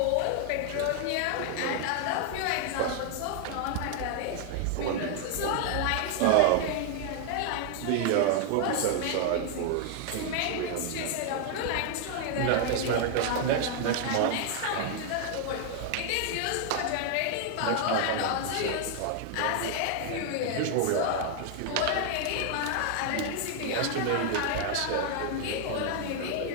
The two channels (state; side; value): different; both; correlation 0.00